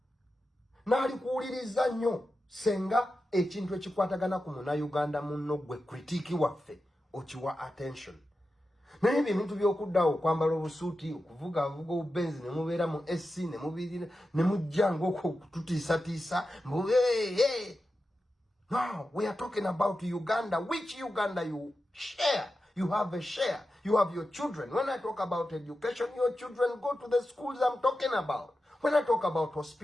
Naali kuwuliriza nnyo senga ekintu ekikwatagana ku Munnayuganda munno gwe critique waffe okiwa attention. Naye ebintu by'okuddawo okwambala obusuuti okuvuga obubenzi ne mubeera mu SC ne mubirira ne mujja ng'okututiisatiisa mbu hey. No, we are talking about Uganda. Which Uganda you share? You have a share. You have your children. When I talk about education, your children go to the schools I'm talking about. When I talk about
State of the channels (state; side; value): normal; both; correlation 0.91